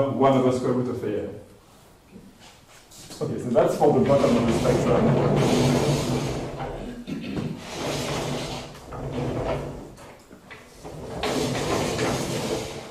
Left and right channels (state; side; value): identical; both; correlation 1.00